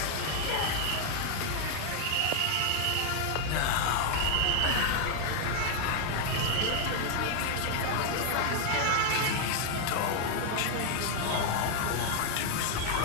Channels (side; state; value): both; different; correlation 0.00